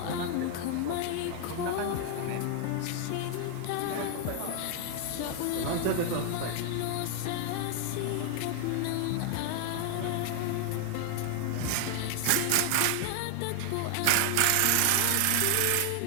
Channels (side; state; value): both; different; correlation 0.00